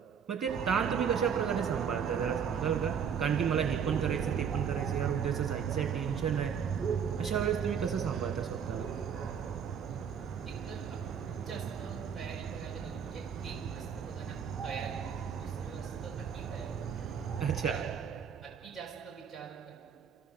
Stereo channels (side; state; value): left; quieter; 7.3 dB